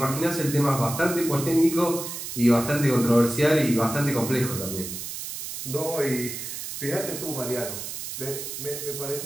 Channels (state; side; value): noise; right; hiss, 7 dB below the sound